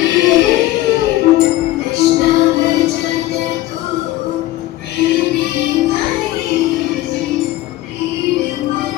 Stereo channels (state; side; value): quieter; right; 16.0 dB